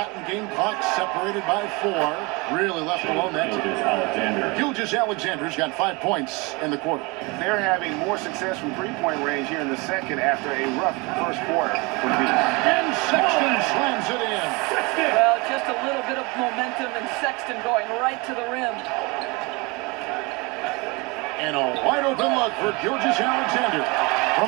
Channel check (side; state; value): left; quieter; 26.9 dB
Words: and game clock separated by 4. Really left alone that time. Gilgeous-Alexander's got 5 points in the quarter. They're having more success from three-point range here in the second after a rough first quarter for me. And Sexton slams it in. Well, just a little bit of momentum, and Sexton going right to the rim. And a wide open look for Gilgeous-Alexander. From